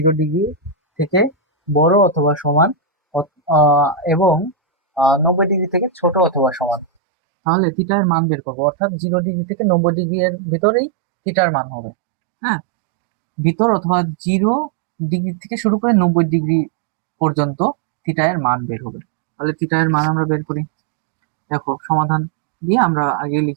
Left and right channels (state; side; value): drops out; left; at 6.9 s